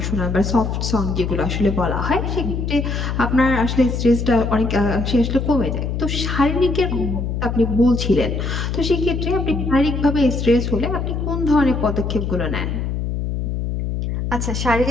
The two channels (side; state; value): left; noise; hum, 2 dB below the sound